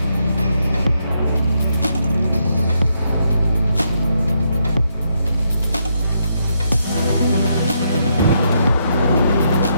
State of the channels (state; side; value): inverted; both; correlation -0.78